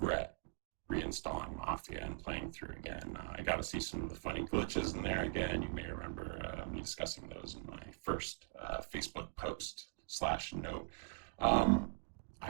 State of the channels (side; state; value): left; quieter; 35.4 dB